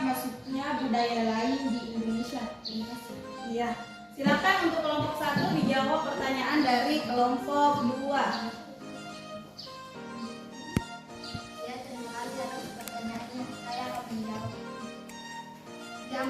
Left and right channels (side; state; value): both; identical; correlation 1.00